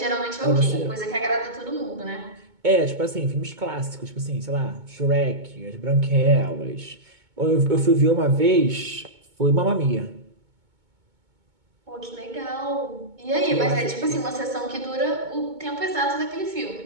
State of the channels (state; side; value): late; left; 2.2 ms